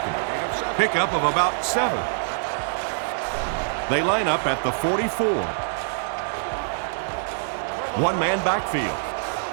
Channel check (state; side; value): silent; left; digital silence